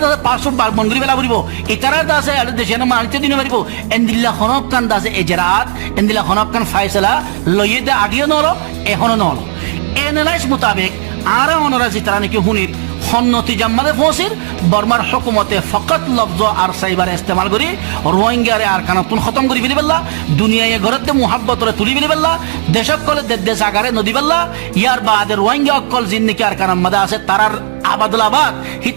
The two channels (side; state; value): left; silent; digital silence